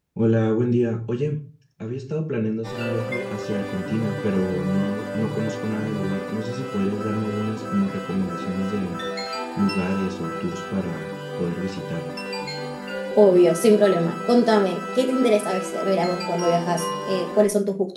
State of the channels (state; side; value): identical; both; correlation 1.00